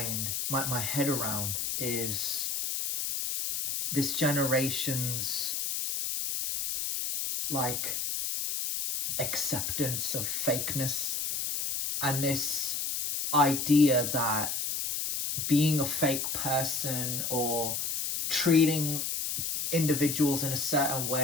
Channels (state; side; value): noise; left; hiss, 2 dB below the sound